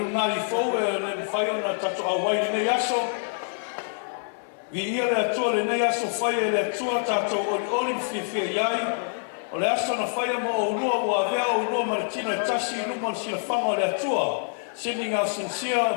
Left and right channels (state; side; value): silent; right; 61 dB below the other